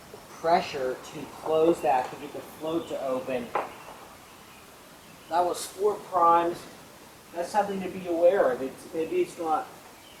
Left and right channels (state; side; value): identical; both; correlation 1.00